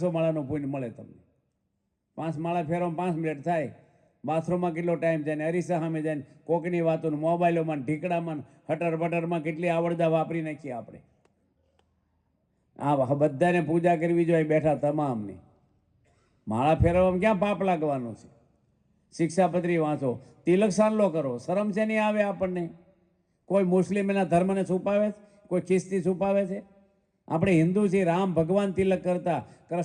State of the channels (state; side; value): identical; both; correlation 1.00